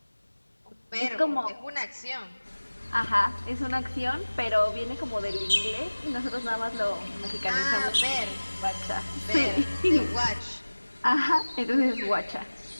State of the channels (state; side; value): inverted; both; correlation -1.00